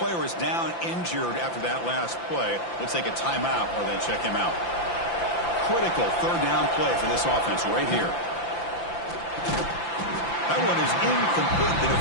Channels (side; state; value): right; late; 5.9 ms